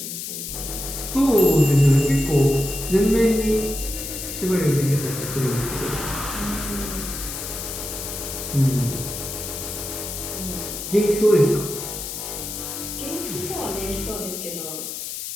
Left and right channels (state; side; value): noise; left; hiss, 7 dB below the sound